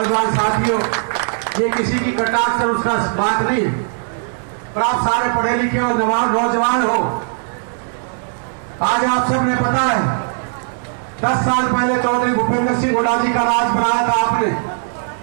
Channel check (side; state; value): left; silent; digital silence